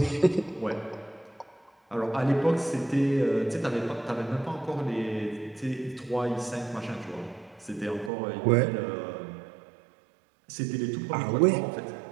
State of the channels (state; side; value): drops out; left; at 8.1 s